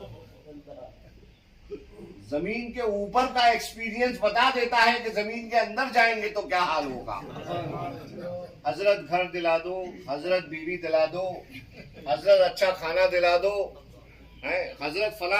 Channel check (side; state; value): both; identical; correlation 1.00